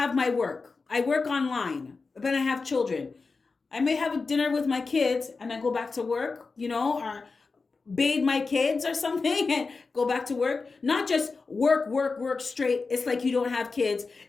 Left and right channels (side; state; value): right; quieter; 4.3 dB